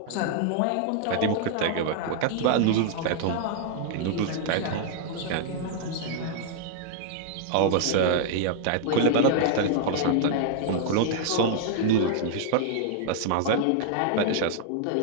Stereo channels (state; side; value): different; both; correlation -0.01